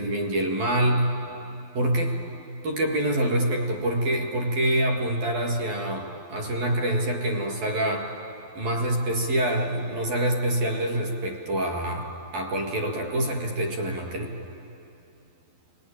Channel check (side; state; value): left; late; 12 ms